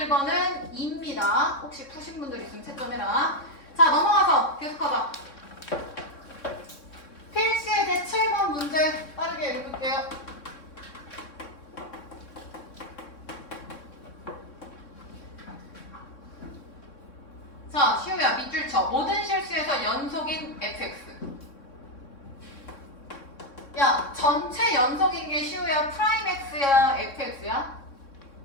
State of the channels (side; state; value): right; late; 3.6 ms